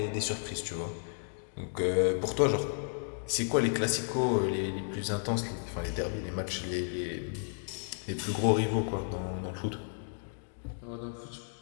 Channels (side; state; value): right; silent; digital silence